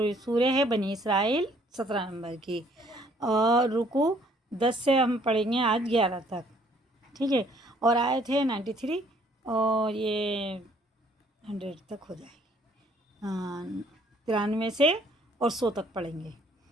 سورہ ہے بنی اسرائیل 17 نمبر کی، اور رکوع 10 سے ہم پڑھیں گے آج 11 تک، ٹھیک ہے، اور آیت ہے 93 اور یہ 100 تک ہو جائے گی، 93 سے اور 100 تک پڑھیں گے۔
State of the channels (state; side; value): normal; both; correlation 0.62